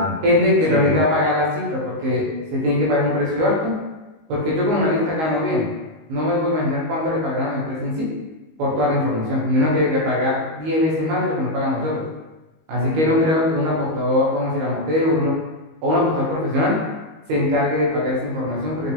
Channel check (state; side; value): late; left; 19 ms